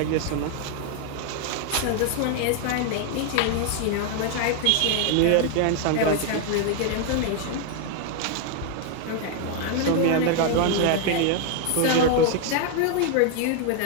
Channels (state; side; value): different; both; correlation 0.00